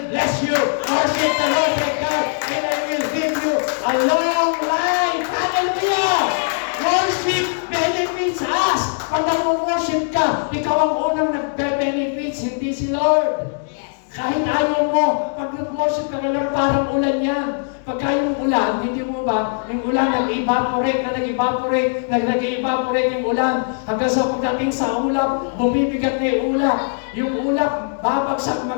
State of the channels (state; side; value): silent; right; digital silence